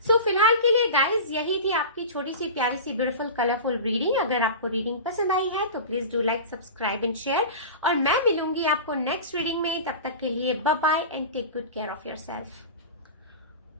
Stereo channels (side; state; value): both; inverted; correlation -0.30